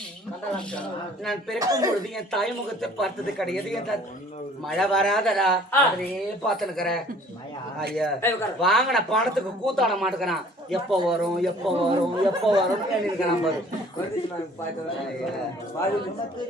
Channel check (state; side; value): normal; both; correlation 0.53